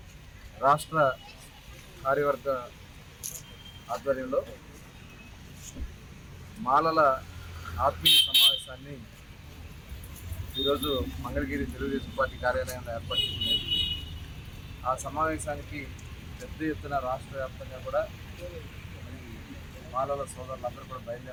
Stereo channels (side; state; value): both; identical; correlation 1.00